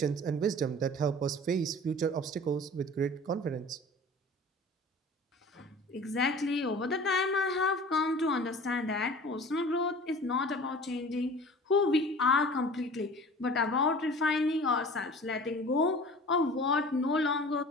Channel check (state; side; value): normal; both; correlation 0.42